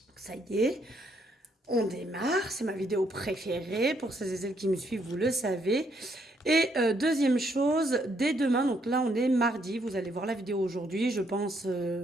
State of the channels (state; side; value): normal; both; correlation 0.72